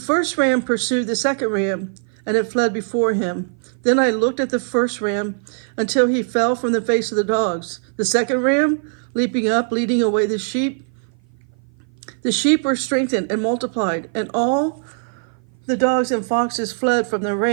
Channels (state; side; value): silent; left; 56 dB below the other